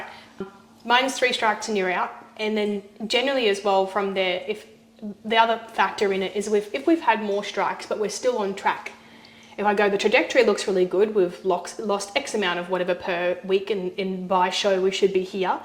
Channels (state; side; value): identical; both; correlation 1.00